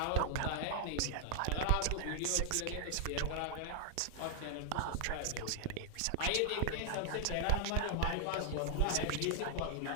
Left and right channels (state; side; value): different; both; correlation 0.00